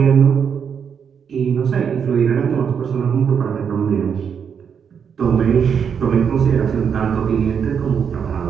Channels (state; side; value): quieter; left; 7.2 dB